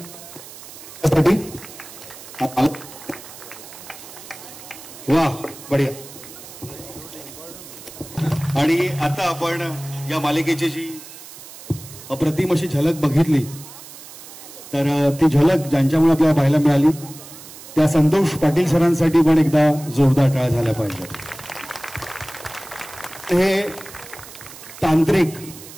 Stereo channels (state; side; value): noise; right; hiss, 16 dB below the sound